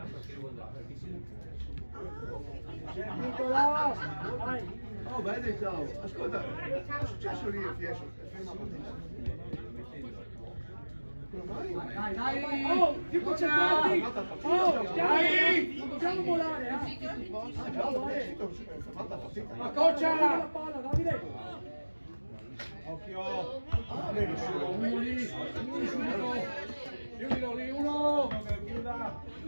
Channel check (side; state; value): both; inverted; correlation -1.00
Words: Nicolò! Vai! Oh, vedi, ciao! Ascolta, che è successo lì a Fiesco? Ferma Dai! Oh, più concentrati! Oh, dai! Non dobbiamo volare, Ma coccia! La palla, Davide! Occhio. Uno lì! Uno subito! Chiudilo lì, uno! Chiuda.